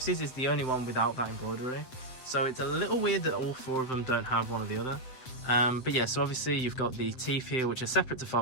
is the only one without that embroidery, so it's a little weird that all four of them don't have one or the other. But yeah, so obviously you've got the teeth here, which are separate to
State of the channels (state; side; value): late; right; 7.8 ms